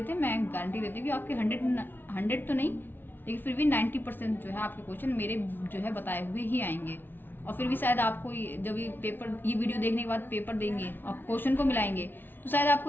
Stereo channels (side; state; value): right; late; 0.097 ms